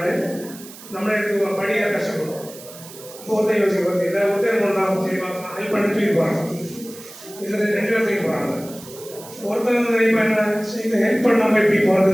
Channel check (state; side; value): noise; right; hiss, 17 dB below the sound